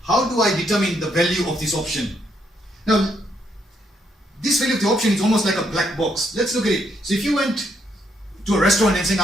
How do I determine the value of this option? Now, this value of the option is almost like a black box. Let's look at it. So if you went to a restaurant and saying,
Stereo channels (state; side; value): normal; both; correlation 0.74